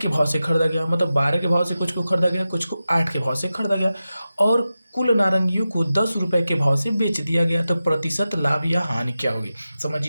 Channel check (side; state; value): both; inverted; correlation -0.93